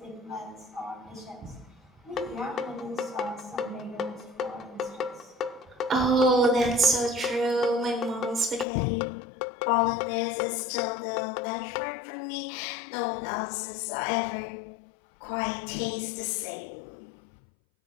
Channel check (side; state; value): right; drops out; at 8.7 s